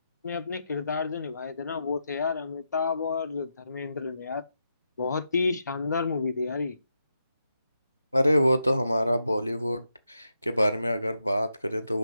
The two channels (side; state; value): both; inverted; correlation -0.85